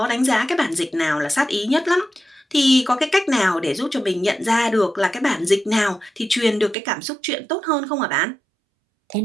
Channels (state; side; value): drops out; left; at 6.8 s